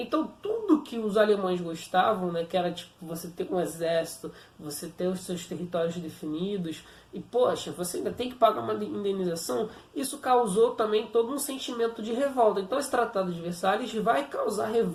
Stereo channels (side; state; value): both; identical; correlation 1.00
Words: tudo que os alemães gostavam, né, que era tipo você ter um exército, você ter os seus territórios definidos, e poxa, você ainda tem que pagar uma indenização, isso causou também todo um sentimento de revolta. Então esse Tratado de Versalhes vai causar